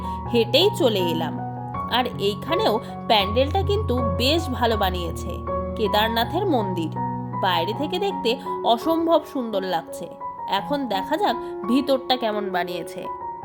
হেঁটেই চলে এলাম। আর এইখানেও প্যান্ডেলটা কিন্তু বেশ ভালো বানিয়েছে, কেদারনাথের মন্দির, বাইরে থেকে দেখতে অসম্ভব সুন্দর লাগছে। এখন দেখা যাক ভিতরটা কেমন বানিয়েছে।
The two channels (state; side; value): identical; both; correlation 1.00